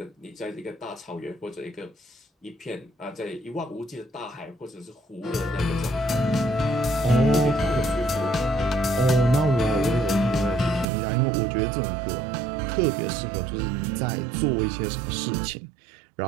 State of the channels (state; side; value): drops out; left; at 10.9 s